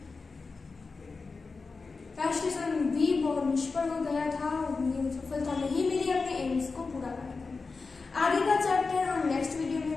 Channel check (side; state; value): right; quieter; 4.3 dB